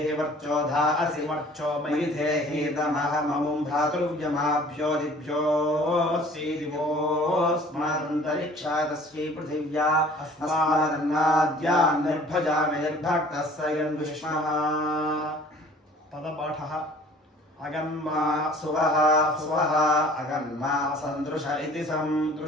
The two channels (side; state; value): both; normal; correlation 0.50